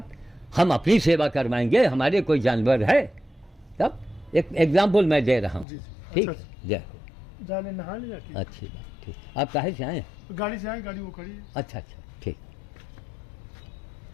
हम अपनी सेवा करवाएंगे, हमारे कोई जानवर है। तब एक एग्जाम्पल मैं दे रहा हूँ। ठीक, जय हो। जाने नहा लिया? अच्छी बात, ठीक। आप कहाँ से आए? गाड़ी से आए, गाड़ी वो खड़ी है। अच्छा, ठीक।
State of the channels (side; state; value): right; drops out; at 5.7 s